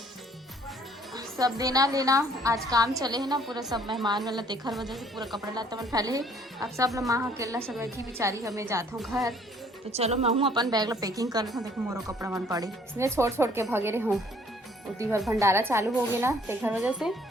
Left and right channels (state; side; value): normal; both; correlation 0.60